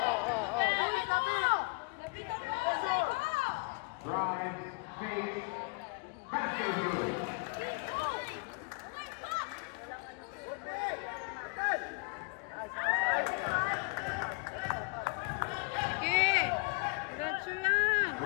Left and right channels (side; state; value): right; quieter; 32.0 dB